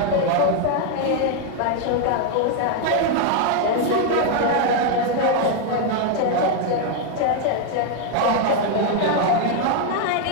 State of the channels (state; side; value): different; both; correlation 0.01